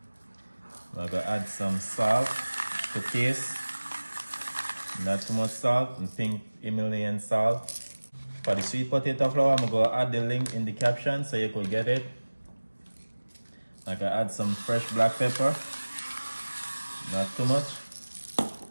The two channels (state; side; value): inverted; both; correlation -1.00